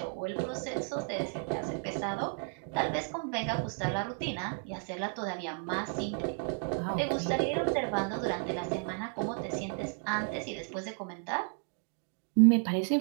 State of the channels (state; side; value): quieter; left; 38.7 dB